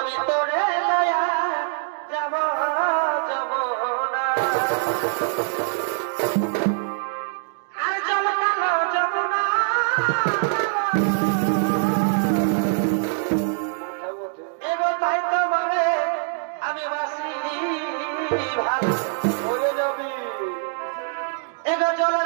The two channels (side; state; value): left; silent; 57 dB below the other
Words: তোরে লয়া যাব যাব না আর জল কালো যাব না এগো তাই তোমারে আমি বাসি ভালো হয়ে যাবি এগো